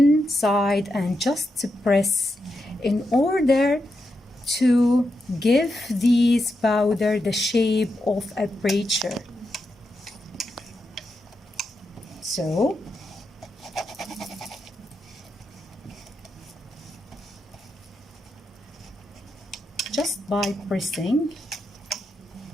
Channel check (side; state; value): both; normal; correlation 0.86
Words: side and just press in order to give this powder the shape of aperture. So just by pressing,